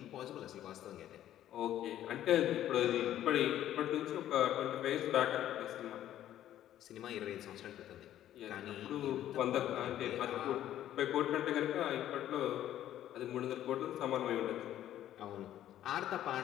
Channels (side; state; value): right; quieter; 12.1 dB